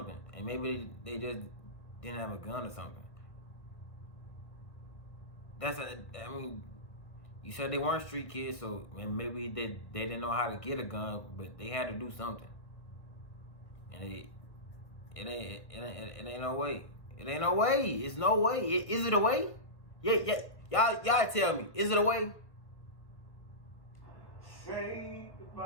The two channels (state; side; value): late; right; 1.8 ms